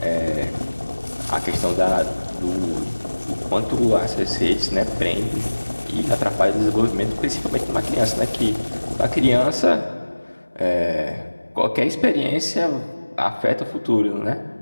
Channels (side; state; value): both; inverted; correlation -1.00